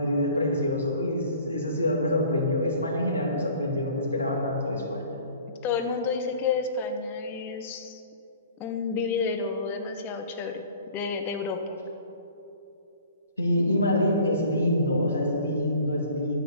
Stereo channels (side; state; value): both; inverted; correlation -0.48